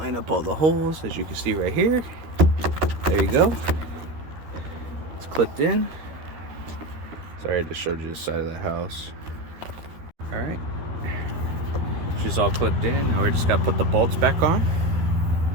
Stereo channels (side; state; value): left; late; 13 ms